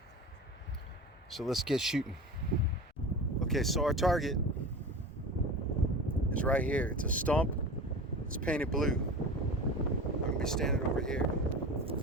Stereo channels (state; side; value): normal; both; correlation 0.32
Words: So let's get shooting. Okay, so our target is right here. It's a stump. It's painted blue. I'm gonna be standing over here.